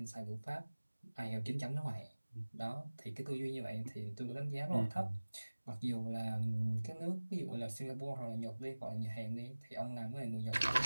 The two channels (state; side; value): inverted; both; correlation -1.00